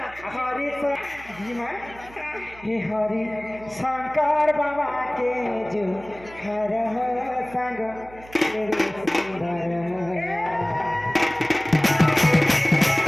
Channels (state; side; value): noise; right; hum, 21 dB below the sound